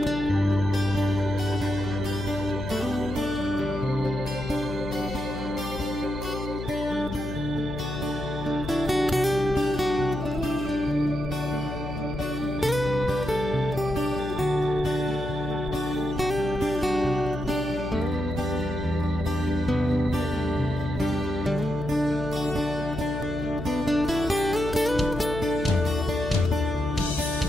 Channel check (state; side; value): noise; left; hum, 7 dB below the sound